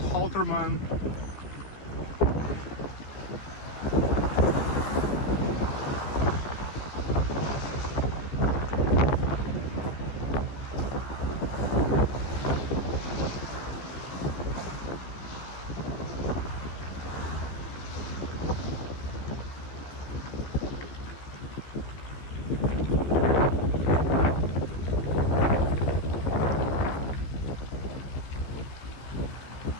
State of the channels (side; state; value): right; late; 15 ms